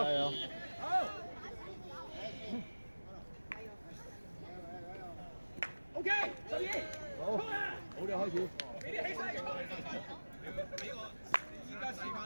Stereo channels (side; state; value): both; inverted; correlation -1.00